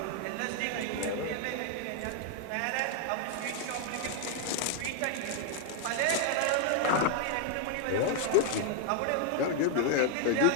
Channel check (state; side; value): different; both; correlation 0.00